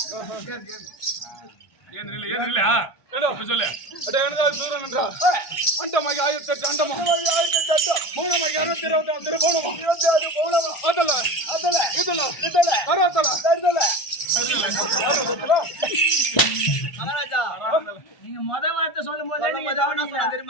அண்டமாகி 1008 அண்டமா 1008 மூணமாகி 626 போனமா 26 போனமா அதல மகாராஜா நீங்க முத வார்த்தை சொல்லும் போதே நீங்க கவனிச்சா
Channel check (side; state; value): right; late; 1.5 ms